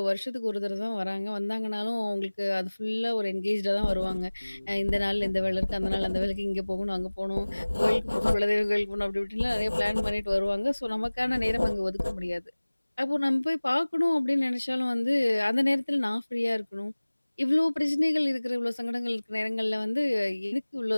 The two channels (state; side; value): inverted; both; correlation -1.00